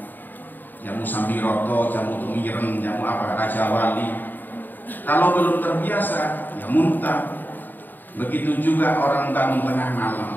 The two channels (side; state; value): right; late; 0.090 ms